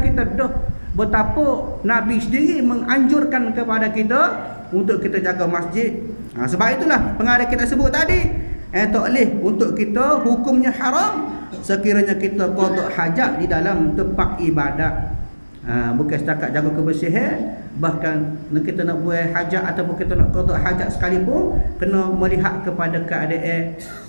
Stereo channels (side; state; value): both; inverted; correlation -1.00